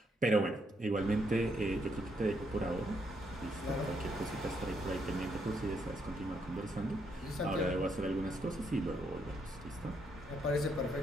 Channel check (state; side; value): normal; both; correlation 0.75